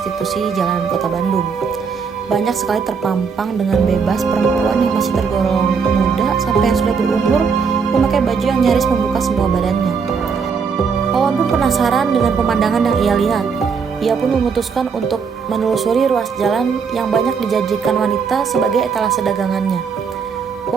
jalanan kota Bandung. Banyak sekali terpampang dengan bebas perempuan yang masih tergolong muda sampai yang sudah berumur memakai baju yang nyaris membuka semua badannya. Wawan pun penasaran dengan pemandangan yang ia lihat. Ia pun memutuskan untuk menelusuri ruas jalan yang banyak dijanjikan wanita sebagai etalase dagangannya.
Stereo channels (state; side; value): quieter; left; 5.8 dB